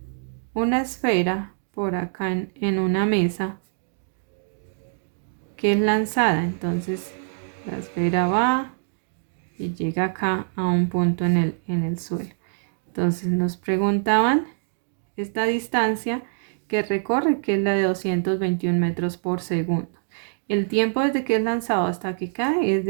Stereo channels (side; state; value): left; silent; digital silence